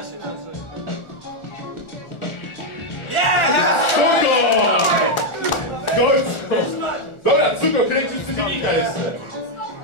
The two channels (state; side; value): late; right; 1.4 ms